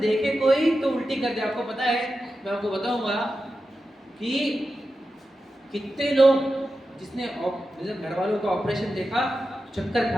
कोई तो उल्टी कर दे। आपको पता है, मैं आपको बताऊंगा कि कितने लोग जिसने घर वालों का ऑपरेशन देखा चक्कर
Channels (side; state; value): both; normal; correlation 0.91